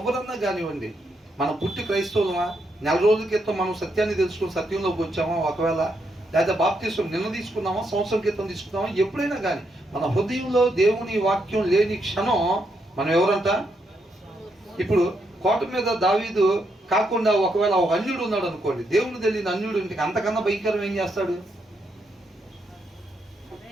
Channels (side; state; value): both; normal; correlation 0.79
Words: కానివ్వండి. మనం పుట్టి క్రైస్తవులమా, నెల రోజుల క్రితం మనం సత్యాన్ని తెలుసుకుని సత్యంలోకి వచ్చామా, ఒకవేళ లేదా బాప్తిసం నిన్న తీసుకున్నామా, సంవత్సరం క్రితం తీసుకున్నామా, ఎప్పుడైనా కానీ మన హృదయంలో దేవుని వాక్యం లేని క్షణం మనం ఎవరంట? ఇప్పుడు కోట మీద దావీదు కాకుండా ఒకవేళ ఒక అన్యుడు ఉన్నాడు అనుకోండి, దేవుని తెలియని అన్యుడు ఇంటికి అంతకన్నా భయంకరం ఏం చేస్తాడు?